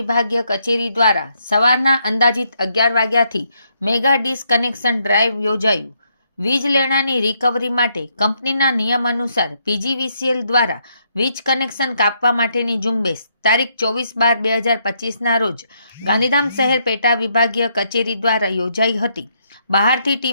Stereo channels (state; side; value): inverted; both; correlation -0.75